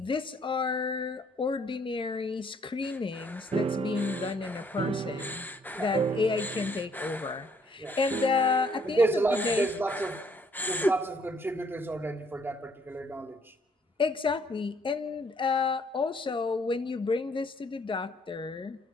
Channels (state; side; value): normal; both; correlation 0.65